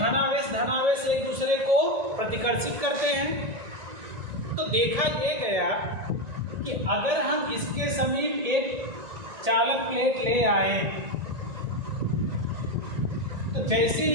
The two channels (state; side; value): late; left; 1.9 ms